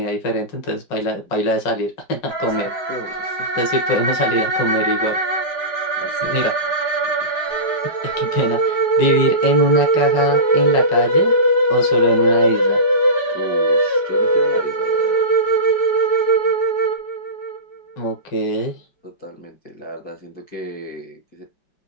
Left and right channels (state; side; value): late; right; 5.4 ms